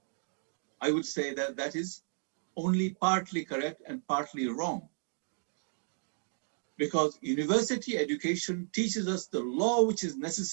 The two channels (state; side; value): silent; left; 56 dB below the other